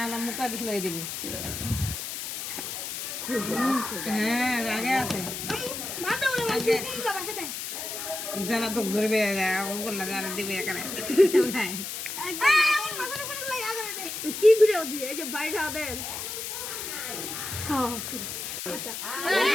মুখা দিছিল এদিকে। হ্যাঁ, রাগে আছে। জানা তো ধরবে, করলে জানা দিবে এখানে। কি ভিডিও দিয়ে এই যে বাইরে ওদের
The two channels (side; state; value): left; noise; hiss, 6 dB below the sound